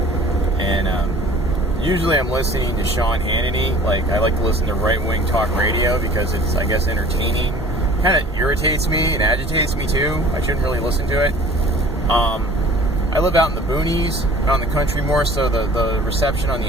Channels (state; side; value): normal; both; correlation 0.48